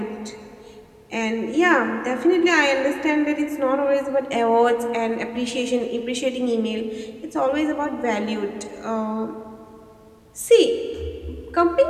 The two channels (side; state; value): both; identical; correlation 1.00